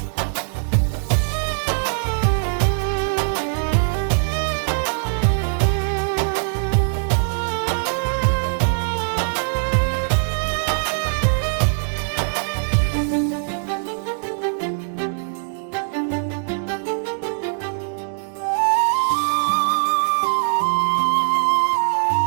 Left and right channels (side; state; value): left; silent; digital silence